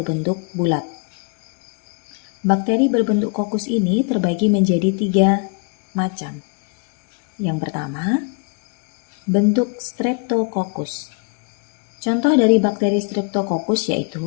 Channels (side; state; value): right; quieter; 34.6 dB